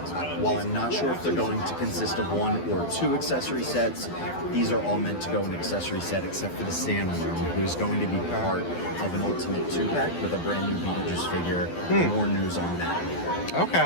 while I'm not sure if they're going to consist of 1 or 2 accessory sets, these are all meant to go in an accessory set except for the Sandworm, who is going to be part of an Ultimate 2-pack with a brand new Beetlejuice figure. More news on that.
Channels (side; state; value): right; late; 12 ms